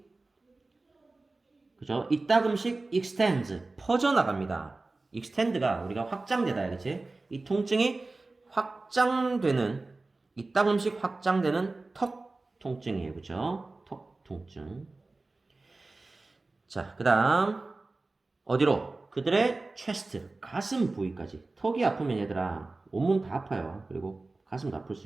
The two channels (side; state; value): left; quieter; 3.3 dB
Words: 그죠? 이따금씩 extends 퍼져나갑니다. extend가 우리가 확장되다, 그치? 이 통증이 확장되는 이따금씩 확장되는 턱 통증이에요. 그죠? 턱 통증. 자, 그 다음 어디로? 그들의 chest, 가슴 부위까지. 턱이 아프면 얘들아 온몸 다 아파요. 그리고 가슴도 아플